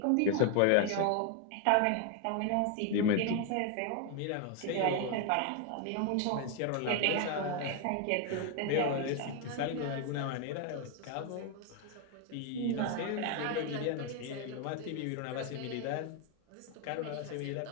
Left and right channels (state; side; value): different; both; correlation 0.01